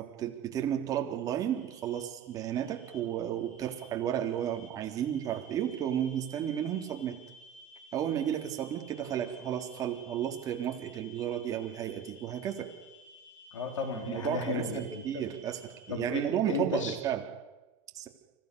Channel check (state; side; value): quieter; left; 7.1 dB